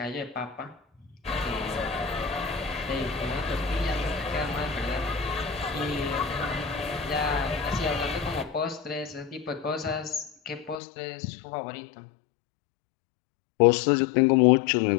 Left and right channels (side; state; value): right; drops out; at 10.8 s